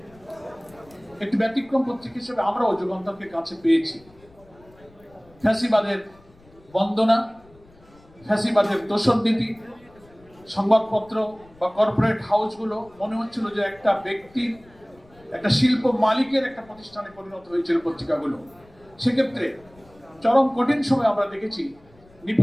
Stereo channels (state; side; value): noise; left; rumble, 27 dB below the sound